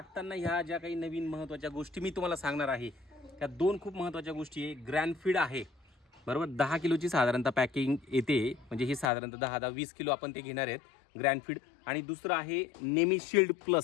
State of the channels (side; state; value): right; drops out; at 9.1 s